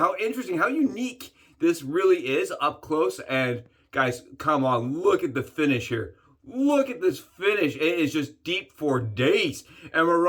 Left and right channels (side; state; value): both; identical; correlation 1.00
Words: interesting, how unique this really is up close. And guys, come on, look at the finish here. Look at this finish. It is just deep for days. And we're